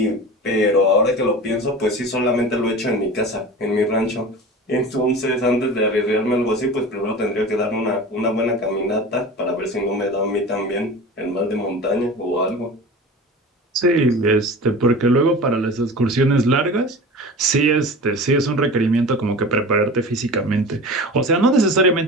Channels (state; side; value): normal; both; correlation 0.34